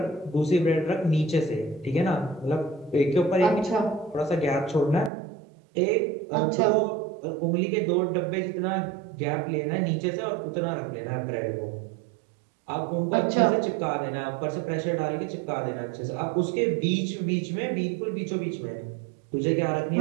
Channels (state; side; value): drops out; left; at 5.1 s